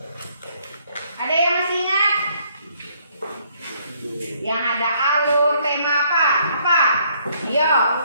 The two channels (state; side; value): inverted; both; correlation -0.67